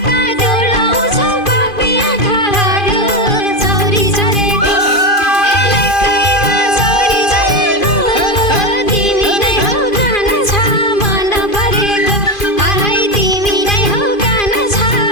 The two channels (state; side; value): late; right; 2.5 ms